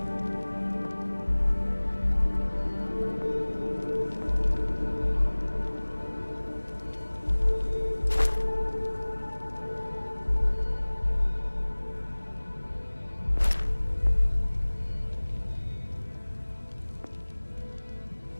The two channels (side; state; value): both; inverted; correlation -1.00